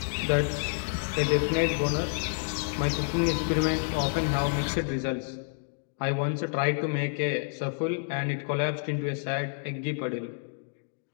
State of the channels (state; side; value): silent; right; digital silence